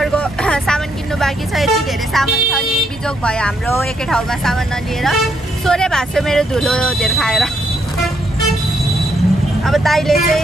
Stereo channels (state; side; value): normal; both; correlation 0.75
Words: सामान किन्नु बाँकी छ यति धेरै सामान छ नि बिजोग भयो हाम्रो एकै ठाउँमा सामान नलिएर सोरे भास्यो मेरो धुलो धेर खाएर अब दाइले